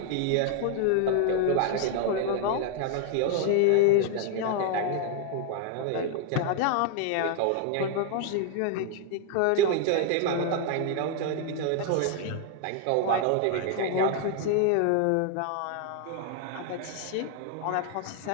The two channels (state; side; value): different; both; correlation 0.00